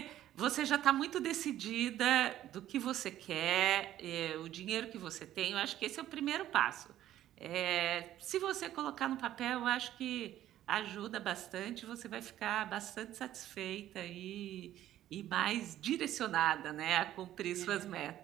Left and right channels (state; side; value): quieter; left; 12.8 dB